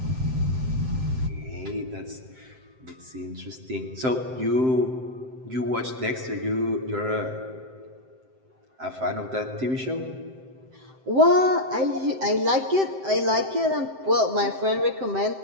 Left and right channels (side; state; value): left; late; 7.7 ms